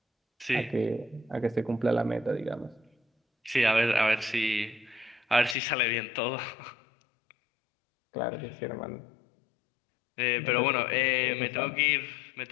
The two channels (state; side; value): drops out; right; at 5.6 s